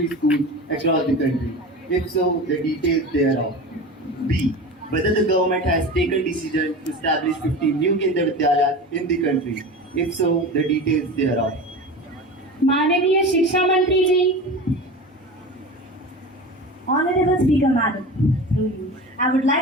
schools across the country? If so, the details thereof. B. Whether the government has taken decision to establish 50 new Kendra Vidyalayas in the country? If so, the details thereof. माननीय शिक्षा मंत्री जी। Honorable Speaker Madam, through you, I would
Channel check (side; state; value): both; normal; correlation 0.31